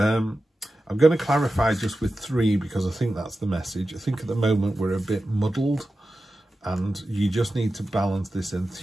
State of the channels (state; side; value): normal; both; correlation 0.93